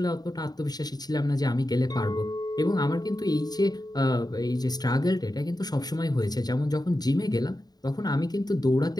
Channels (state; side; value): late; right; 0.19 ms